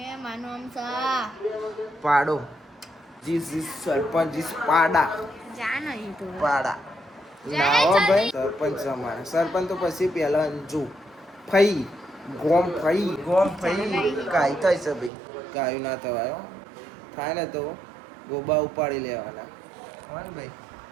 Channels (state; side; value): drops out; left; at 15.1 s